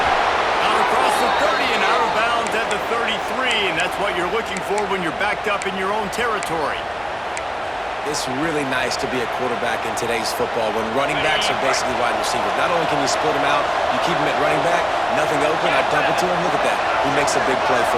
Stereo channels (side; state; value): both; identical; correlation 1.00